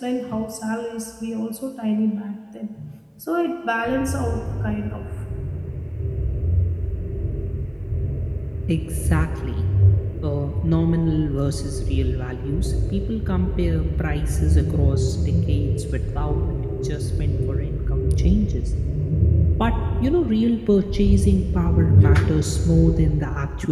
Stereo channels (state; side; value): identical; both; correlation 1.00